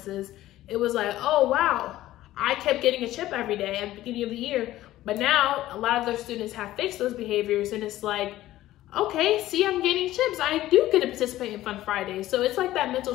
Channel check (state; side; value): quieter; right; 15.0 dB